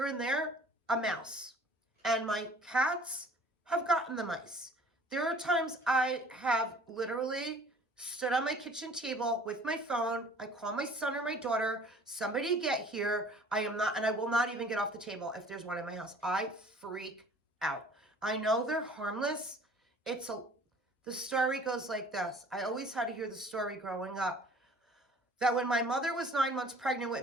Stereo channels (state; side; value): normal; both; correlation 0.51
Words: and there, a mouse. And my cats have gotten the mice. There are times I have literally stood on my kitchen table with my phone. I call my son or my daughter, somebody get here. I will not even get off the table if there's one in my house. I freak out. I know they're harmless. The story goes like this. I always had to hear the story growing up that when my mother was 9 months pregnant